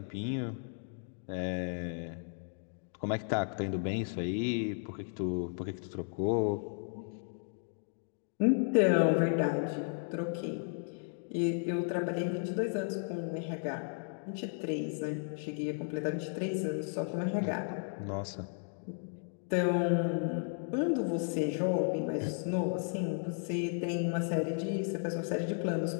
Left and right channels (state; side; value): silent; right; 55 dB below the other